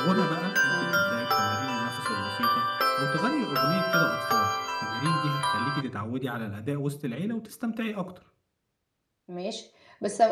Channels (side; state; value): both; identical; correlation 1.00